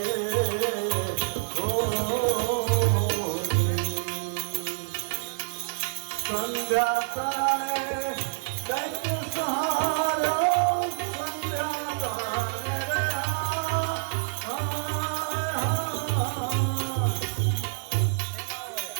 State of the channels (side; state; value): left; silent; 59 dB below the other